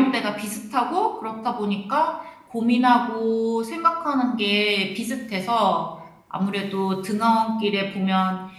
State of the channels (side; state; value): both; identical; correlation 1.00